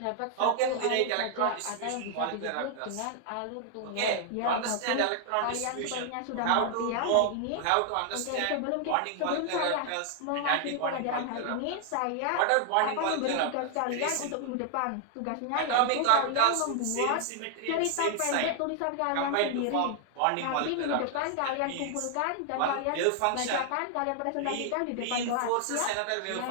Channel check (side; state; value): both; different; correlation 0.00